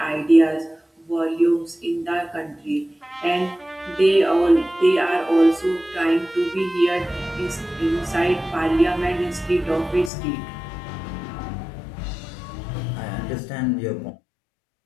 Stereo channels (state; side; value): drops out; right; at 10.1 s